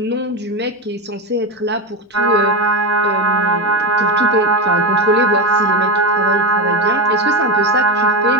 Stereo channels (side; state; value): both; normal; correlation 0.15